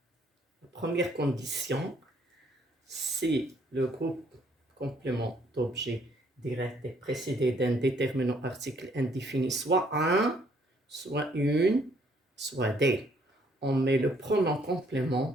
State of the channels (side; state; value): both; normal; correlation 0.66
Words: La première condition, si le groupe complément d'objet direct est précédé d'un déterminant article indéfini, soit un, soit une, soit des. On met le pronom